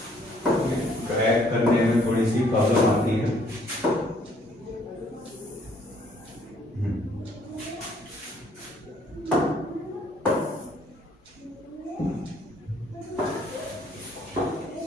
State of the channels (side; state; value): both; normal; correlation 0.63